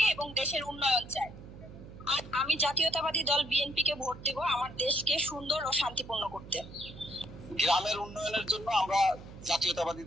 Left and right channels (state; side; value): noise; right; hum, 15 dB below the sound